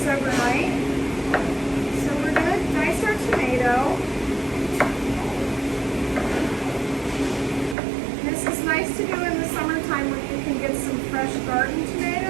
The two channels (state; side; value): drops out; left; at 7.8 s